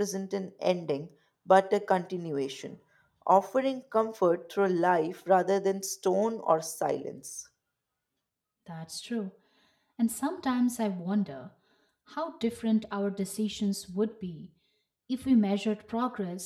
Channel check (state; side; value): identical; both; correlation 1.00